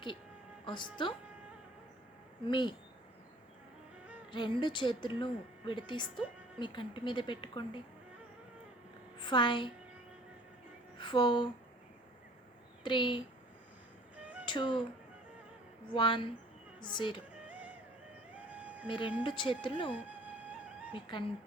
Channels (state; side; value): normal; both; correlation 0.52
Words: వస్తూ మీ రెండు చేతులను విడతీస్తూ మీ కంటి మీద పెట్టుకోండి. 5 4 3 2 1 0. మీ రెండు చేతులను మీ